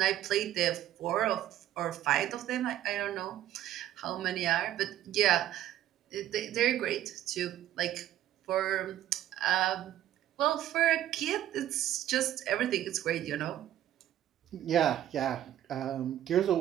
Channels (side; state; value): left; quieter; 12.3 dB